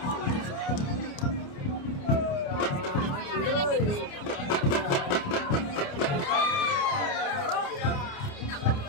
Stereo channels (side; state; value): right; late; 29 ms